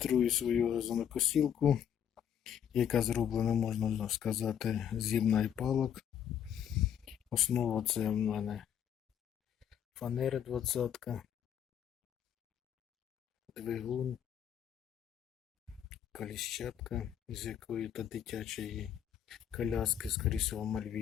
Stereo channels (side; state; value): right; quieter; 9.2 dB